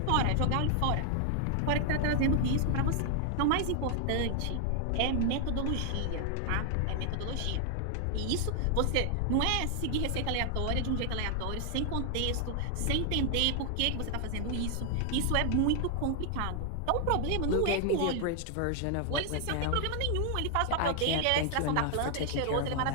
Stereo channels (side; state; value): both; different; correlation 0.00